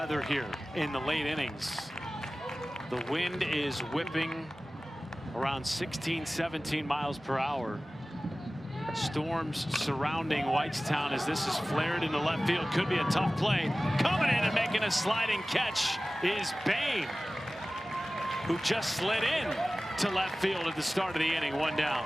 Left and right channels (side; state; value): both; normal; correlation 0.97